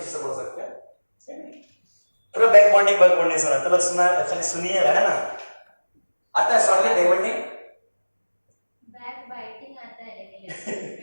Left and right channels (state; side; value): inverted; both; correlation -1.00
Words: बोल सकते हैं, सेम है। पूरा बैक बॉन्डिंग सुना तो लोग सुना, खाली सुनिएगा है ना। आता है shortly back bonding, back biting आता है लेकिन